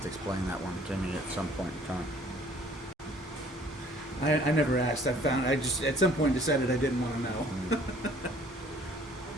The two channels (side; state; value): both; normal; correlation 0.56